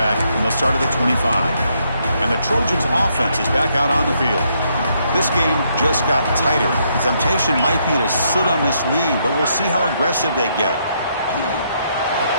and they'll start at the 25. And the Trojans' offense is back out on the field. This game just got tighter. The temptation might be to sit on this lead, but we'll see how aggressive they get.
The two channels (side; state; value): both; inverted; correlation -0.74